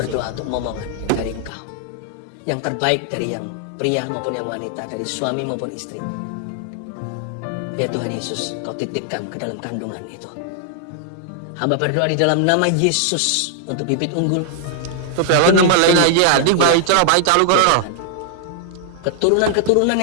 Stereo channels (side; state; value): both; different; correlation -0.01